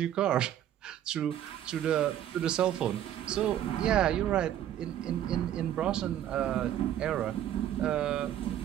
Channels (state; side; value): quieter; left; 11.2 dB